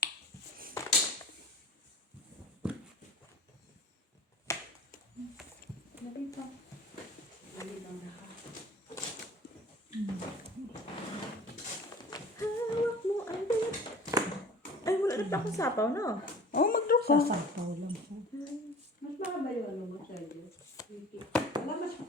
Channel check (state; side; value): normal; both; correlation 0.43